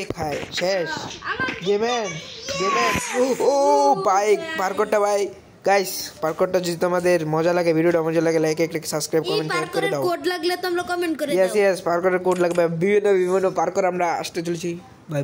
খায় শেষ গেমেন ও বাইক পার করতে ভাই গাইস পার্করটা যদি তোমাদের মজা লাগে ভিডিওটা মজা লাগে লাইক এক সাবস্ক্রাইব এই কমেন্ট শেয়ার করে পার্করের দাও কোড লাগলে তোমরা কমেন্ট করে ইয়েস দাও ইয়েস পার্করের কোড লাগবে বিভিন্ন পার্কর আমরা আসতে চলেছি বাই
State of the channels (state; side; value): identical; both; correlation 1.00